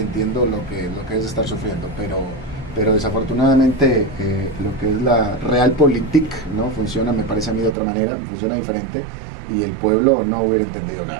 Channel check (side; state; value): left; drops out; at 7.8 s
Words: entiendo lo que es estar sufriendo, pero desafortunadamente lo que es la realpolitik no funciona, me parece a mí, de otra manera, funciona diferente, y el pueblo no hubiera entendido